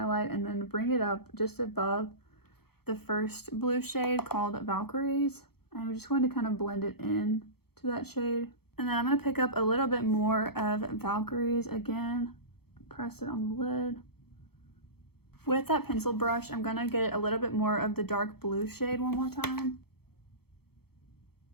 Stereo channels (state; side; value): late; right; 0.96 ms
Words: and then bring it up just above the first blue shade called Valkyries. And I'm just going to kind of blend it in to that shade. And then I'm going to pick up a little bit more of Valkyries again. Press it on the lid. With that pencil brush, I'm gonna get a little bit more of the dark blue shade one more time.